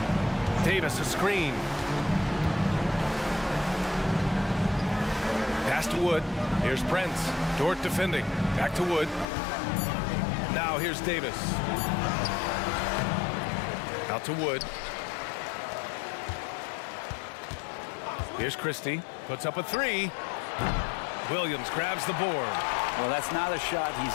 Davis a screen. Pass to Wood. Here's Prince. Dort defending. Back to Wood. Now here's Davis. Out to Wood. Here's Christie. Puts up a 3. Williams grabs the board. Well, that's not a shot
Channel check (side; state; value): right; drops out; at 9.2 s